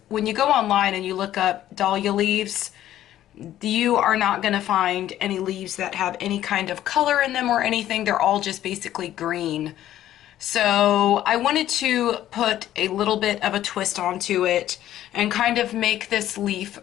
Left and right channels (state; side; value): quieter; right; 12.7 dB